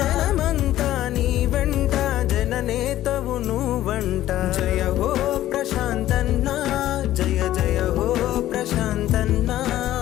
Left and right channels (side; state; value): right; quieter; 13.8 dB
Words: జనమంతా నీ వెంట జననేతవు నువ్వంట జయ హో ప్రశాంతన్న జయ జయ హో ప్రశాంతన్న